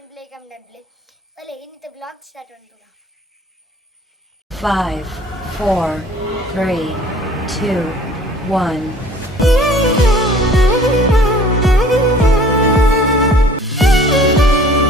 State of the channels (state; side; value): normal; both; correlation 0.52